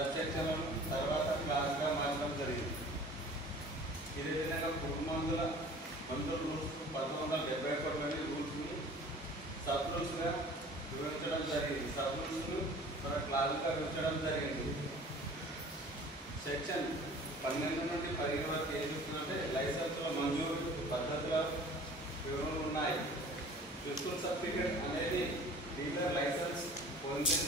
సెక్షన్లను తర్వాత క్లాస్గా మార్చడం జరిగింది. ఇదే విధంగా పురుగుమందుల రూల్స్ 1971లోని రూల్స్ని సబ్ రూల్స్గా విభజించడం జరిగింది. సబ్ రూల్స్ను క్లాస్గా విభజించడం జరిగింది. సెక్షన్ 12 నుండి 15 వరకు ఏం చెప్తుందంటే లైసెన్సుల మంజూరు పద్ధతుల వివరణలు ఉన్నాయి. ప్రిన్సిపల్ సర్టిఫికేట్ అనేది డీలర్ లైసెన్స్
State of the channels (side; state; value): both; normal; correlation 0.46